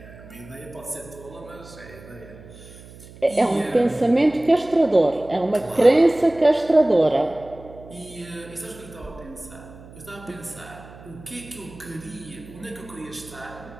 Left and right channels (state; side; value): noise; right; hum, 19 dB below the sound